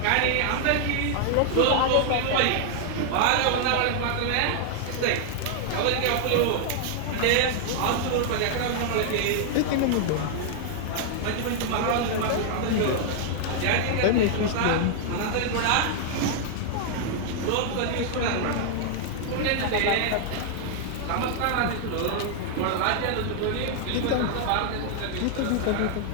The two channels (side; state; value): both; different; correlation 0.00